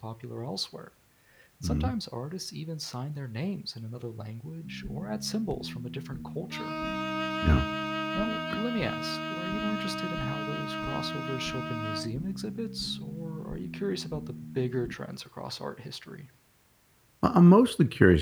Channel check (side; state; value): both; identical; correlation 1.00